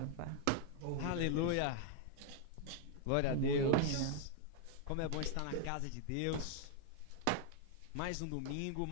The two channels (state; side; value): different; both; correlation 0.00